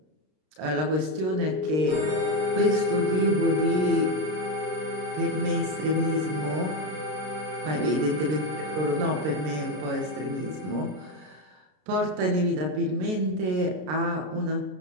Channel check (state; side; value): late; left; 32 ms